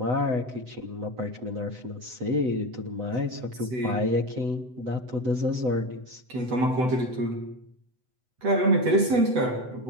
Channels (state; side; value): late; left; 8.0 ms